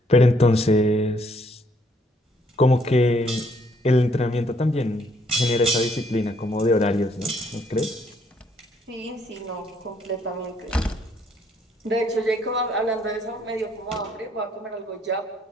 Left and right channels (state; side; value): normal; both; correlation 0.68